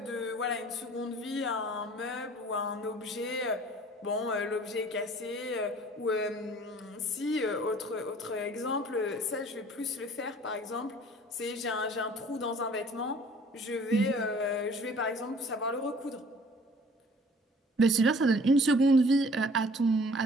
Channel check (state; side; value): normal; both; correlation 0.52